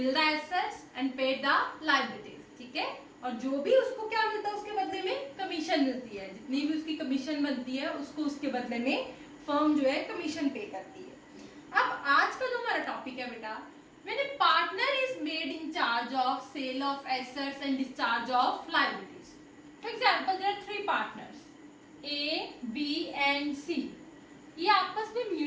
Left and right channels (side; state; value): both; identical; correlation 1.00